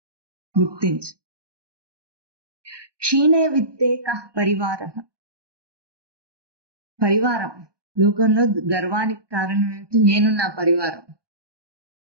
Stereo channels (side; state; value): left; late; 1.2 ms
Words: గుర్తించు. క్షీణే విత్తే కః పరివారః. పరివారం లోకంలో గర్వానికి కారణం ఏమిటి? నేను నా పరివారం.